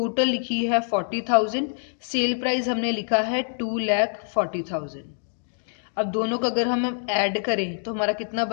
लिखी है 40,000, सेल प्राइस हमने लिखा है 2,40,000। अब दोनों का अगर हम ऐड करें तो हमारा कितना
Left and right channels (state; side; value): silent; right; digital silence